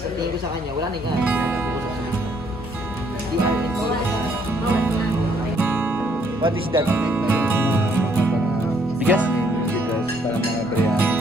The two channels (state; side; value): normal; both; correlation 0.68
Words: Sa tingin ko sa kanya, wala na yung What is that? Bigas? Bigas para mga biryani.